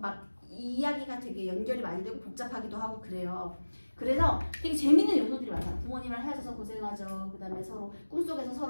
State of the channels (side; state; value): both; inverted; correlation -1.00